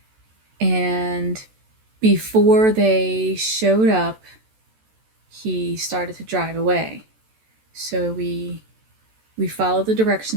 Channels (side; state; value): left; late; 14 ms